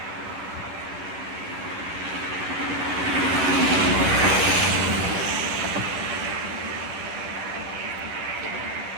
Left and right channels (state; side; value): late; left; 11 ms